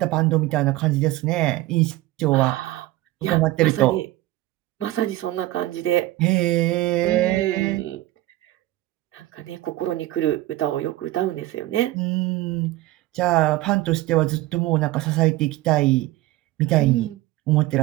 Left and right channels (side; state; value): left; quieter; 16.9 dB